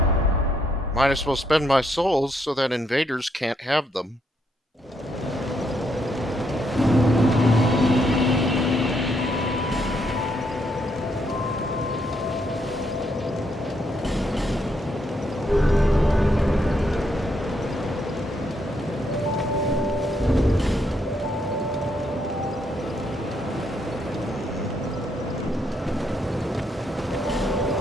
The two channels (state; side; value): normal; both; correlation 0.75